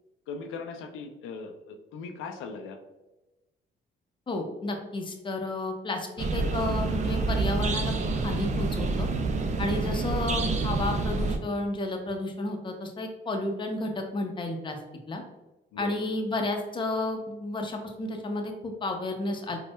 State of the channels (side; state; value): both; normal; correlation 0.58